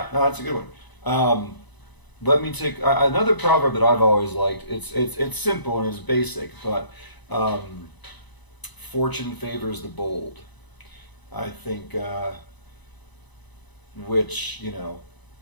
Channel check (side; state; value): right; late; 1.0 ms